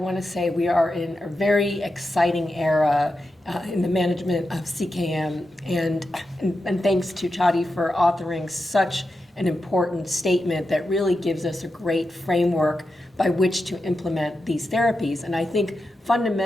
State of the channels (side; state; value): both; normal; correlation 0.89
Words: to say we are in a very exciting era in the management of CKM, and thanks to Chiade for authoring such an important statement that really gives us a great framework by which to implement these therapies. And I think